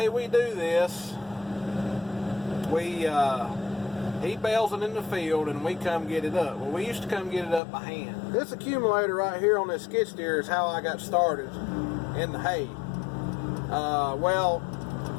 we do this, he bales it in the field and we come get it up. Well, we used to come get it up by hand. This accumulator right here on this skid steer is how I got started in the hay. Well,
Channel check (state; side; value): drops out; right; at 7.6 s